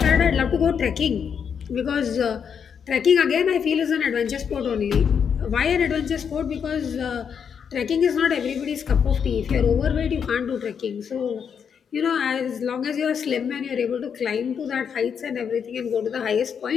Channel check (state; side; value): quieter; right; 7.2 dB